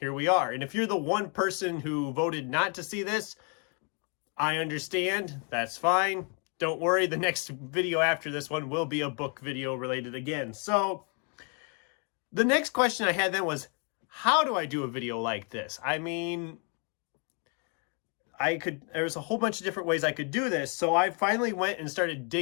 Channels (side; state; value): right; quieter; 37.8 dB